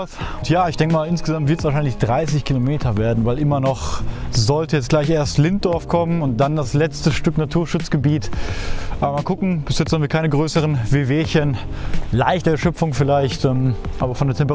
Und ja, ich denke mal insgesamt wird es wahrscheinlich 30 Kilometer werden, weil immer noch sollte jetzt gleich erst Linddorf kommen und dann das letzte Stück Naturschutzgebiet. Aber mal gucken, bis jetzt haben wir keine größeren Wehwehchen. Leichte Erschöpfung vielleicht, aber von der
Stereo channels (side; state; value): both; identical; correlation 1.00